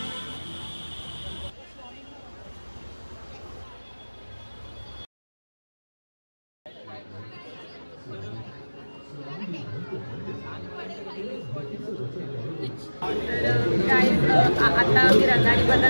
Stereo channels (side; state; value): both; inverted; correlation -1.00